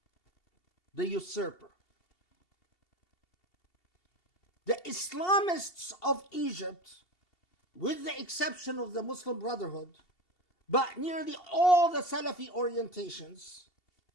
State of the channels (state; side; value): late; right; 2.7 ms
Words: the usurper. The Islamists of Egypt, with the exception of the Muslim Brotherhood, but nearly all the Salafi orientations